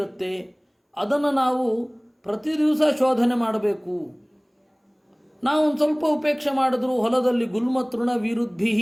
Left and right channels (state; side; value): identical; both; correlation 1.00